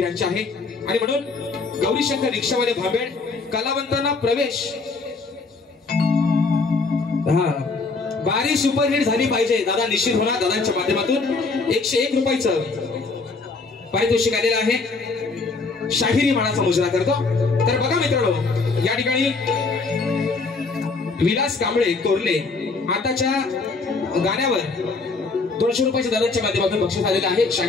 आहे. आणि म्हणून गौरीशंकर रिक्षावाले भांबेड कलावंतांना प्रवेश बारी सुपरहिट झाली पाहिजे. दादा निश्चित होणार दादांच्या माध्यमातून 101 रुपयाचं पारितोषिक आलेलं आहे, शाहिरी मानाचा मुजरा करतो. तर बघा मित्रांनो, या ठिकाणी विलास कांबळे कोरले आताच्या गाण्यावर 200 रुपयाच्या दराच्या माध्यमातून बक्षीस आलेलं आहे,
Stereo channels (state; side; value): quieter; right; 4.0 dB